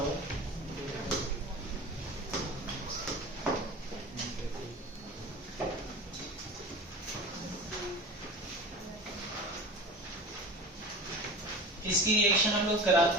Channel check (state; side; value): normal; both; correlation 0.34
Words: इसकी रिएक्शन हम लोग